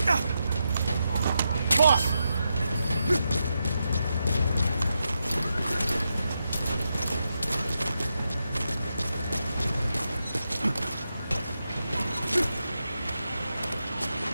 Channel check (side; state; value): both; inverted; correlation -0.86